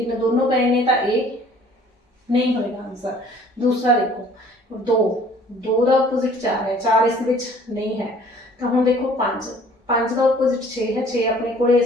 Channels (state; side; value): normal; both; correlation 0.54